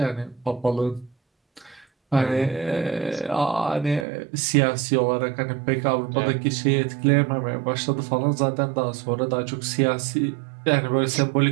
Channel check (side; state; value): left; drops out; at 4.0 s